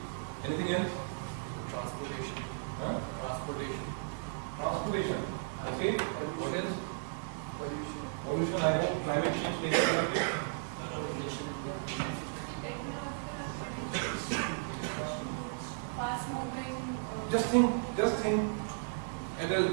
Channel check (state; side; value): silent; left; digital silence